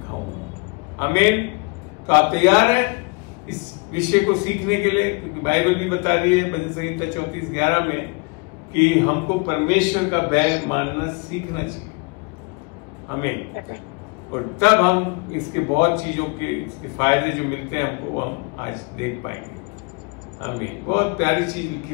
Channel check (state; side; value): quieter; right; 30.9 dB